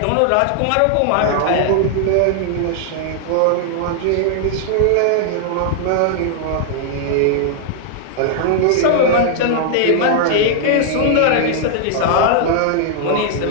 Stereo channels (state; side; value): different; both; correlation -0.01